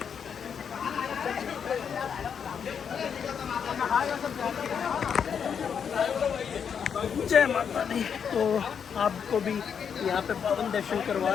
जय माता दी। तो आपको भी यहाँ पे पावन दर्शन करवा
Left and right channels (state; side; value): quieter; right; 7.2 dB